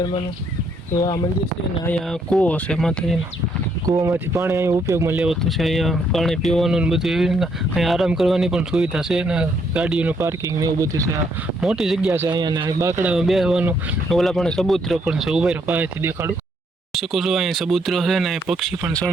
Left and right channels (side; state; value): both; normal; correlation 0.72